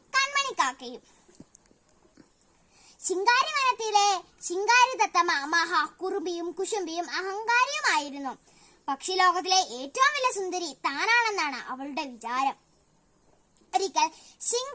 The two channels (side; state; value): both; identical; correlation 1.00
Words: കൺമണിക്കാക്കയും. ശിങ്കാരി വനത്തിലെ ശിങ്കാരി തത്തമ്മ കുറുമ്പിയും കുശുമ്പിയും അഹങ്കാരിയുമായിരുന്നു. പക്ഷിലോകത്തിലെ ഏറ്റവും വലിയ സുന്ദരി താനാണെന്നാണ് അവളുടെ വിചാരം. ഒരിക്കൽ